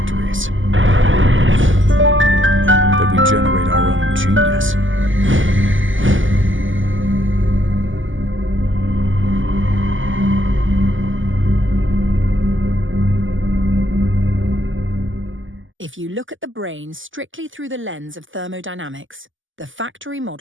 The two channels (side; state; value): left; late; 0.57 ms